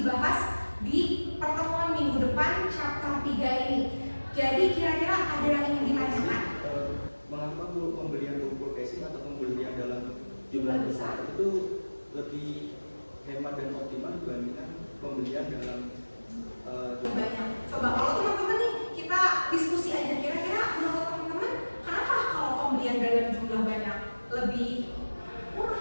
di pertemuan minggu depan chapter 3 ini. Jadi kira-kira ada yang ingin ditanyakan? Mengapa pembelian buku casing atau pembelian dalam jumlah besar itu lebih hemat dan optimal dibandingkan pembelian dalam banyak. Coba kalau teman-teman nih kita diskusi aja, kira-kira menurut teman-teman kenapa kalau pembelian dalam jumlah banyak lebih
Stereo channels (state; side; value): inverted; both; correlation -1.00